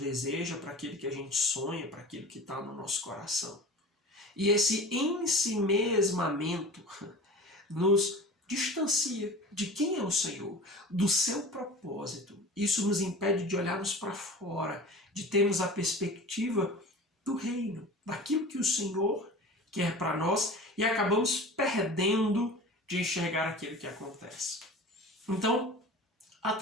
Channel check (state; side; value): normal; both; correlation 0.37